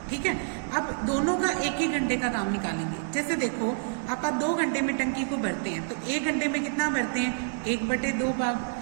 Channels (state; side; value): silent; left; digital silence